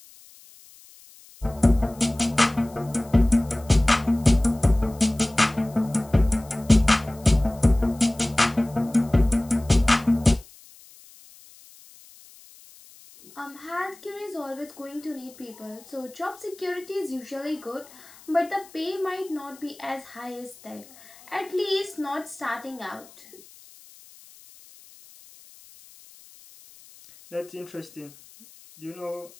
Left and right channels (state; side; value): noise; left; hiss, 23 dB below the sound